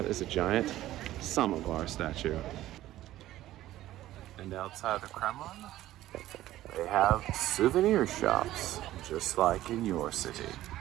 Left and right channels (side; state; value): left; quieter; 14.6 dB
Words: is a giant samovar statue. And outside the Kremlin, they have souvenir shops, just like in your city.